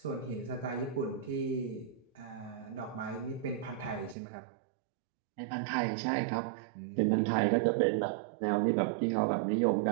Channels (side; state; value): left; drops out; at 4.2 s